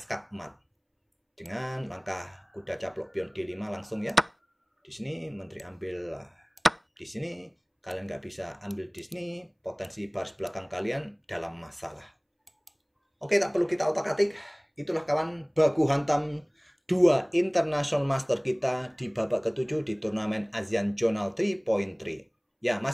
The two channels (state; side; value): identical; both; correlation 1.00